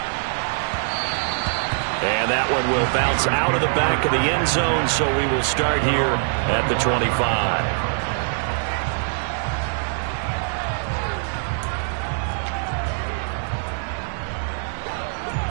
And that one will bounce out of the back of the end zone, so we will start here at the 25.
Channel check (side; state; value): left; silent; 61 dB below the other